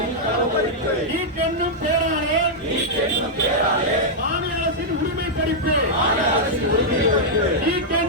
நீட் என்னும் பெயராலே மாநில அரசின் உரிமை பறிப்பு நீட்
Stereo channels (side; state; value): both; normal; correlation -0.07